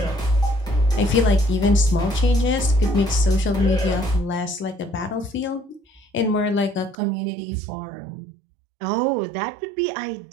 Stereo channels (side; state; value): left; drops out; at 7.0 s